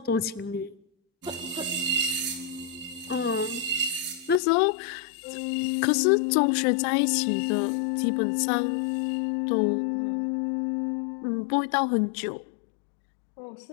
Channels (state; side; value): drops out; right; at 4.4 s